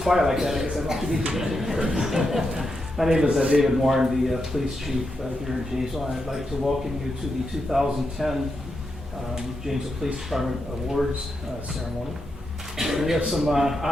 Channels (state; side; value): normal; both; correlation 0.85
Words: quiet like that, I guess I don't have to meet you. My name is David Moore. I'm the police chief here in Janesville. I'd like to welcome you to the 2010 Janesville Police Department Awards ceremony. We have some